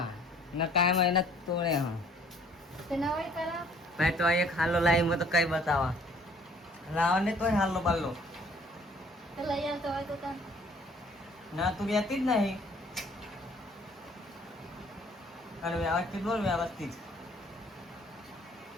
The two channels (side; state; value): both; normal; correlation 0.57